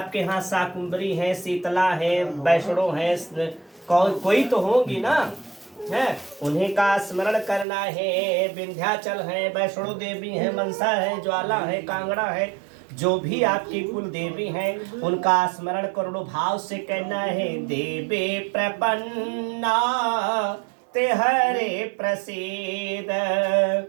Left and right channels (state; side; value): drops out; left; at 7.7 s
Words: यहाँ शाकुंभरी है, शीतला है, वैष्णो है, कोई तो होगी ना, है, उन्हीं का स्मरण करना है। विंध्याचल है, वैष्णो देवी है, मनसा है, ज्वाला है, कांगड़ा है, जो भी आपकी कुल देवी हैं उनका स्मरण करोड़ों भाव से कहना है। देवे प्रपन्ना ते हरे प्रसीद,